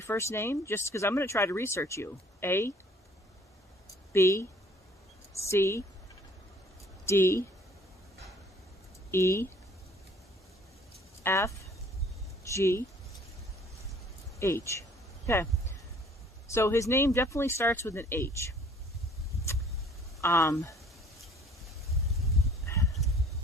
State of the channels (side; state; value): both; normal; correlation 0.56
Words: first name? Just because I'm going to try to research you. A, B, C, D, E, F, G, H. Okay. So his name definitely starts with an H.